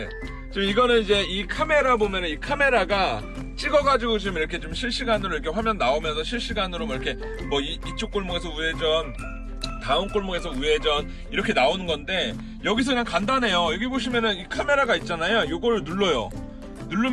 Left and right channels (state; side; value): identical; both; correlation 1.00